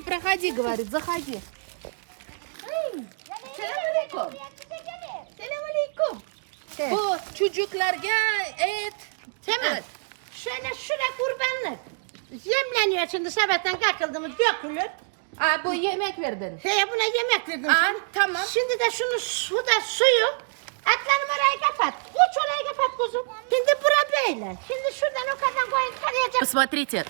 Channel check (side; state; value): left; silent; digital silence